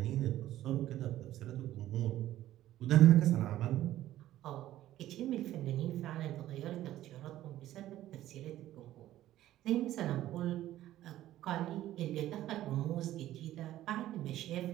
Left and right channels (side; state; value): left; quieter; 13.9 dB